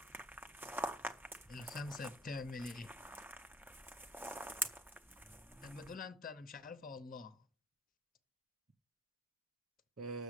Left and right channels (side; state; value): both; normal; correlation 0.57